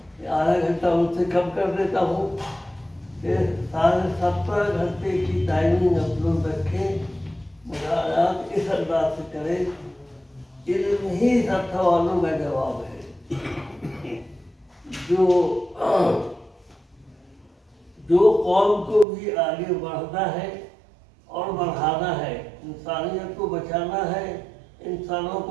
گھنٹہ ان سے کم کر دیتا ہوں کہ 17.5 گھنٹے کی ٹائمنگ ہم لوگ رکھیں، مطالعات اس انداز سے کریں۔ علم ہی سب سوالوں کا جواب ہے۔ جو قوم کو بھی آگے بڑھنا ہے اور بڑھانا ہے، انسانیت کو بچانا ہے، انسانوں کو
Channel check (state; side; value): drops out; left; at 19.1 s